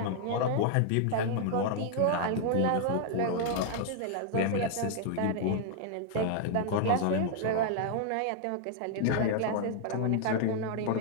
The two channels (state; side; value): different; both; correlation 0.00